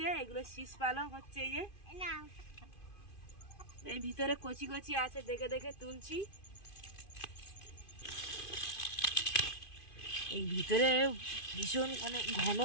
এগুলো শীষ পালং হচ্ছে। এই যে এই ভিতরে কচি কচি আছে, দেখে দেখে তুলছি। এই ভিতরে ভীষণ ঘন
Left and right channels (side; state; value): right; late; 2.5 ms